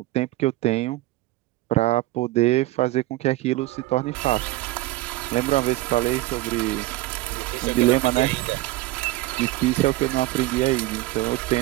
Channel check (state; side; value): quieter; left; 18.2 dB